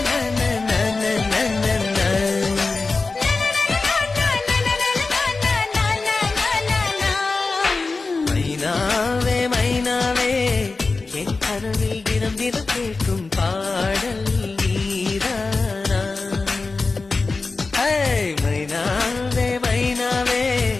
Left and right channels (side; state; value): right; quieter; 3.9 dB